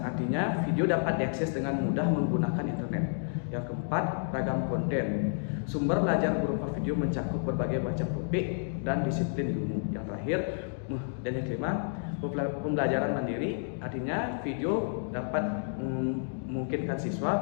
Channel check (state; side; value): silent; right; digital silence